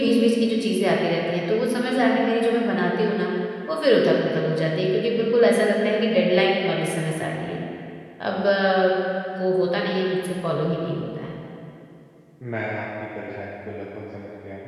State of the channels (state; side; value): identical; both; correlation 1.00